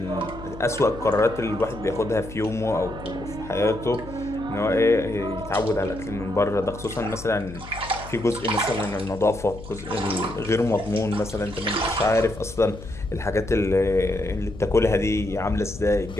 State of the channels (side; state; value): left; noise; hum, 14 dB below the sound